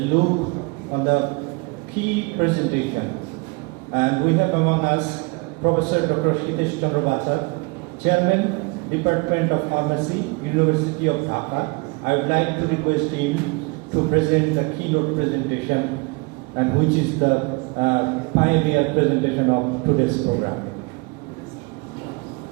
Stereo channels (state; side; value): quieter; left; 28.8 dB